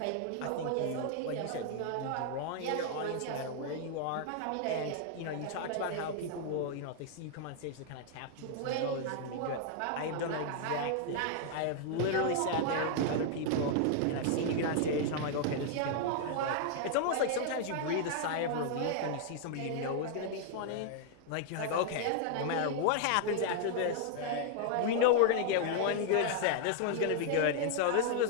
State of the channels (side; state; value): both; different; correlation 0.00